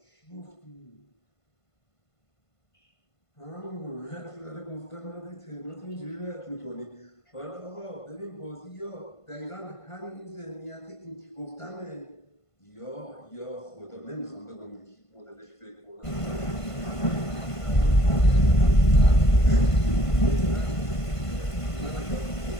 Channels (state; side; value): late; right; 1.5 ms